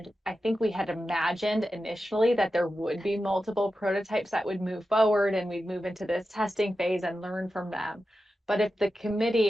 I think we had imagined initially that there would be multiple prototypes that would move forward and we'd move into this testing phase and learn from them. But if the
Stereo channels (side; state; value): both; normal; correlation 0.92